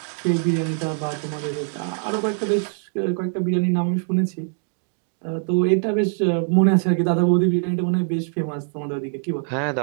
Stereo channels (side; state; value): left; silent; digital silence